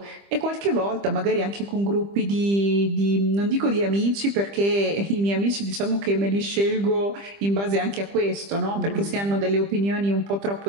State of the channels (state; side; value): late; left; 25 ms